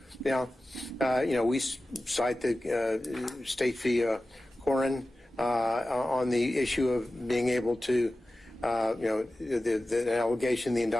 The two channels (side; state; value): both; normal; correlation 0.95